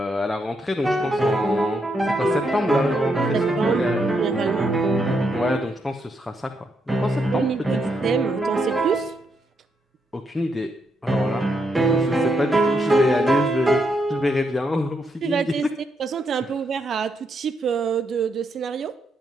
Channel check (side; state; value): both; normal; correlation 0.79